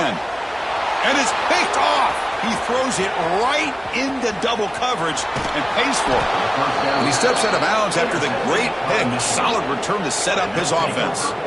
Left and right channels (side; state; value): both; identical; correlation 1.00